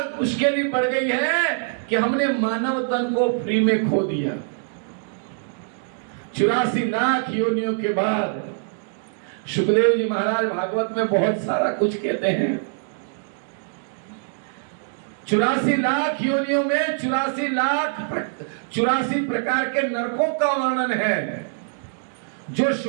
मुश्किलें बढ़ गई है कि हमने मानव तन को फ्री में खो दिया। 84 लाख योनियों के बाद सुखदेव जी महाराज भागवत में बहुत सारा कुछ कहते हैं। 84 लाख योनियों में 84 प्रकार के नरकों का वर्णन है। जो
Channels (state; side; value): silent; left; digital silence